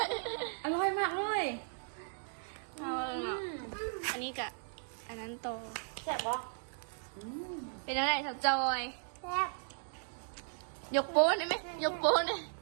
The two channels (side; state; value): left; silent; digital silence